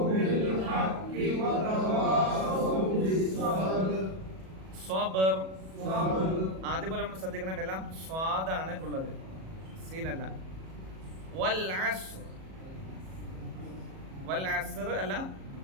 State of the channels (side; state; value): left; late; 37 ms